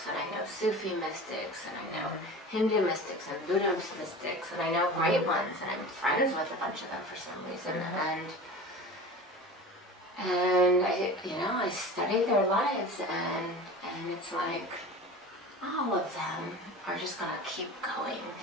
and I know Sufi mystics, and I know Hindu mystics and Buddhist mystics, and I know great ones, and I'm friends with a bunch of them for some reason, and I study their lives, and it's like all of them are just gonna keep going.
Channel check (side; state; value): both; normal; correlation 0.35